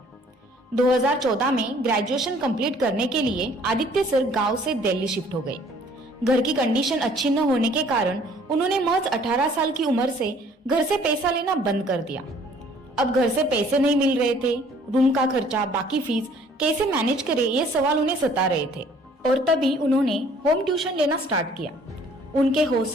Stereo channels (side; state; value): both; normal; correlation 0.57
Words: 2014 में ग्रेजुएशन कंप्लीट करने के लिए आदित्य सर गांव से दिल्ली शिफ्ट हो गए। घर की कंडीशन अच्छी न होने के कारण उन्होंने महज 18 साल की उम्र से घर से पैसा लेना बंद कर दिया। अब घर से पैसे नहीं मिल रहे थे, रूम का खर्चा, बाकी फीस कैसे मैनेज करे, ये सवाल उन्हें सता रहे थे। और तभी उन्होंने होम ट्यूशन लेना स्टार्ट किया। उनके